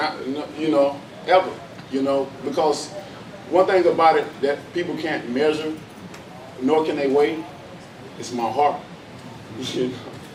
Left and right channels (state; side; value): identical; both; correlation 1.00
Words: you know, ever. You know, because one thing about it that people can't measure, nor can they weigh, is my heart. You know,